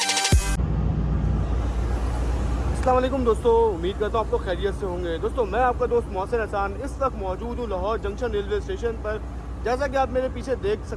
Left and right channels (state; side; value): identical; both; correlation 1.00